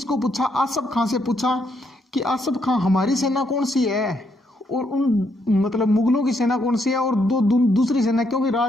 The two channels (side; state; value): both; normal; correlation 0.75